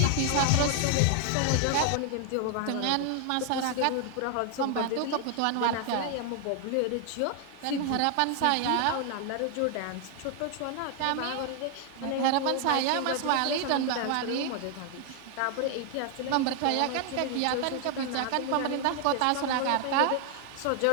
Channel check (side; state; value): both; different; correlation 0.00